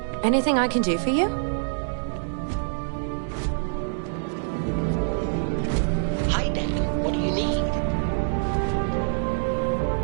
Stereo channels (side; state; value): left; silent; digital silence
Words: Anything I can do for you? Hi, Dan. What do you need?